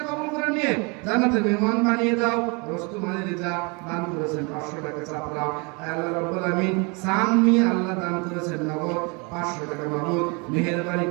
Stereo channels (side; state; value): left; quieter; 30.7 dB